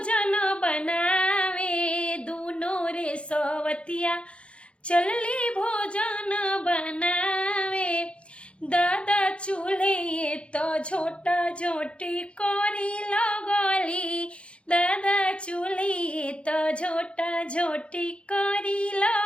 बनावे, दुनो रे सवतिया चलली भोजन बनावे, दादा चूल्हे तो झोटा झोटी करी लगली, दादा चूल्हे तो झोटा झोटी करी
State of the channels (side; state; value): right; late; 0.059 ms